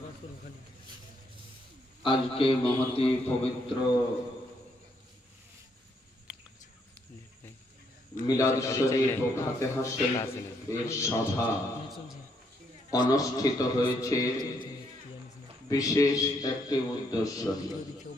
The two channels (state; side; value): normal; both; correlation 0.73